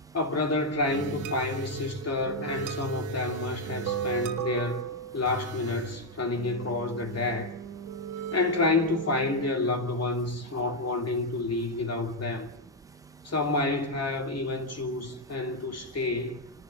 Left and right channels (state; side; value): normal; both; correlation 0.02